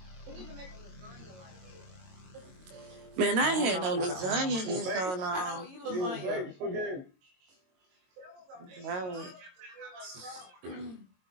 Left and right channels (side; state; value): left; late; 22 ms